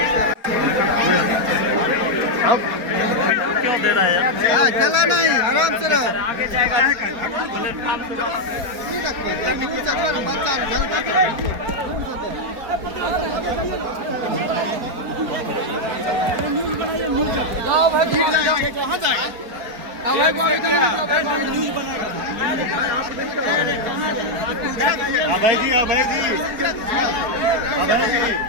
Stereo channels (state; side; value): late; left; 4.3 ms